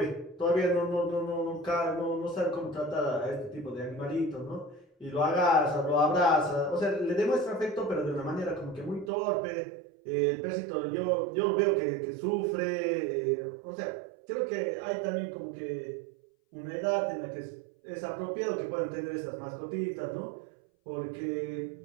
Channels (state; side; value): drops out; left; at 9.1 s